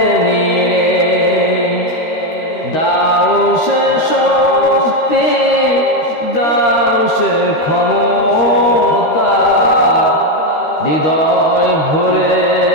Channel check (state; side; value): late; right; 13 ms